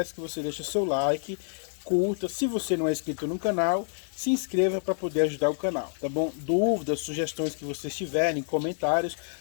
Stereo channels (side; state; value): right; silent; digital silence